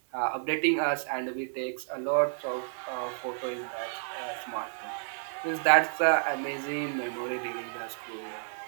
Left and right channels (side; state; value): left; silent; digital silence